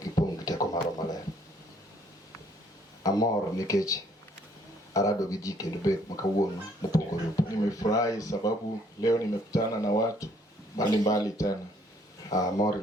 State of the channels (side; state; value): both; normal; correlation 0.64